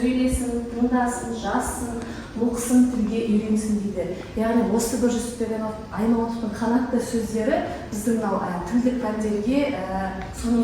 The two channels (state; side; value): identical; both; correlation 1.00